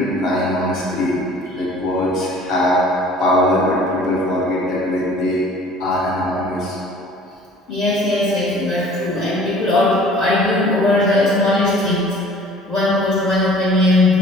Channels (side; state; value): both; normal; correlation 0.50